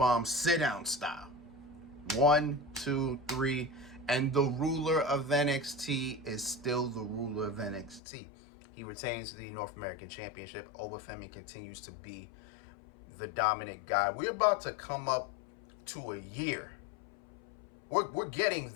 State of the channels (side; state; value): right; drops out; at 8.0 s